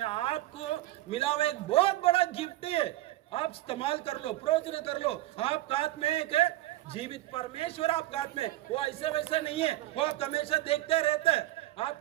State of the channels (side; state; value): left; quieter; 16.1 dB